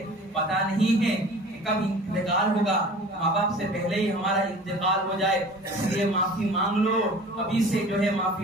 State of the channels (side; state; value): both; normal; correlation 0.43